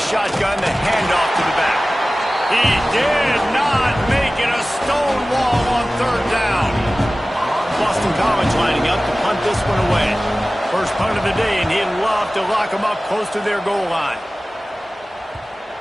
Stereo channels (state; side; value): normal; both; correlation 0.97